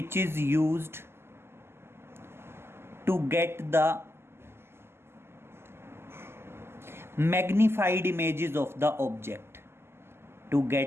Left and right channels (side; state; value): left; late; 0.12 ms